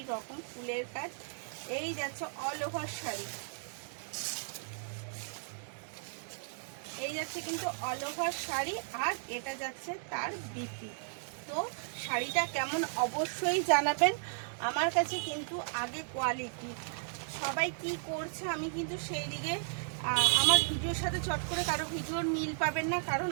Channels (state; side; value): silent; left; 54 dB below the other